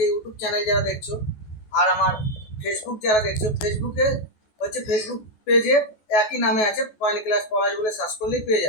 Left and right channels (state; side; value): late; right; 14 ms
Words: ইউটিউব চ্যানেল যারা দেখছো, আর আমার ফেসবুক যারা দেখছো, ফেসবুকে হচ্ছে ফেসবুক পেজে একই নামে আছে, কয়েন ক্লাস পলাশ বলে সার্চ করলেই পেয়ে